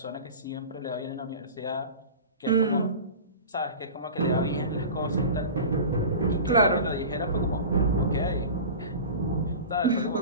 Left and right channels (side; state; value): both; inverted; correlation -0.34